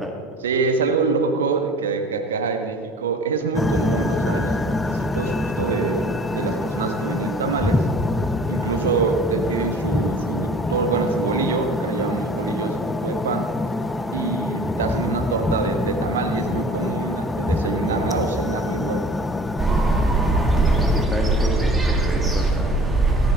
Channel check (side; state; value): both; normal; correlation 0.46